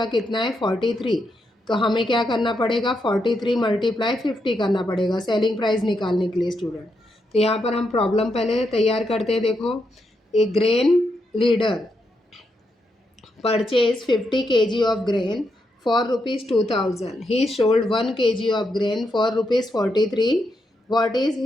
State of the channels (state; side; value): normal; both; correlation 0.82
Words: कितना है 43, तो हमें क्या करना पड़ेगा 43 मल्टीप्लाई 50 करना पड़ेगा सेलिंग प्राइस निकालने के लिए स्टूडेंट। तो यहाँ पर हम प्रॉब्लम पहले तैयार करते हैं। देखो, ए grain leader purchase 50 kg of grain for ₹2000, he sold 1 kg of grain for ₹43, what is